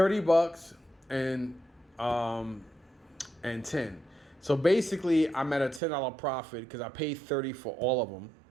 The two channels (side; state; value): left; drops out; at 5.8 s